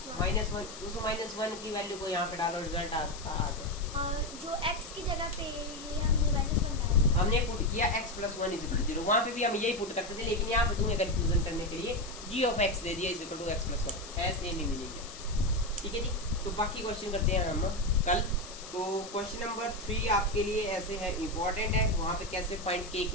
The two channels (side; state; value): left; noise; hiss, 14 dB below the sound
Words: -1। उस -1 की वैल्यू को यहाँ पे डालो, रिजल्ट आ जाए। और जो x की जगह पे ये हमने -1 डाला, हमने पुट किया x plus 1 is equal to 0। वहाँ पे भी हम यही पुट करते थे, लेकिन यहाँ पे तुम्हें कंफ्यूजन करने के लिए g ऑफ x दे दिया is equal to x plus 1 है, सेम ही मीनिंग है, ठीक है जी। तो बाकी क्वेश्चन करते हैं हम कल। तो क्वेश्चन नंबर 3 आपके लिए ऐसे है, इंपॉर्टेंट है, वहाँ पे कैसे फाइंड k